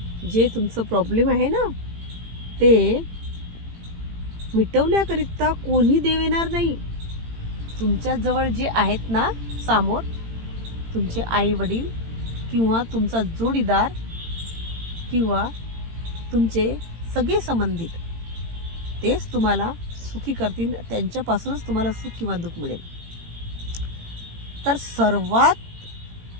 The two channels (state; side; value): late; left; 18 ms